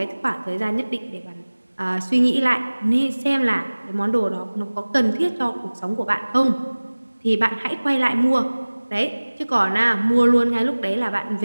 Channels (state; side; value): inverted; both; correlation -1.00